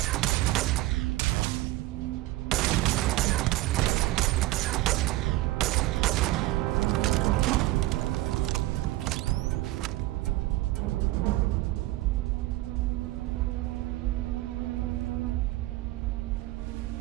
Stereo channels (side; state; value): left; quieter; 17.7 dB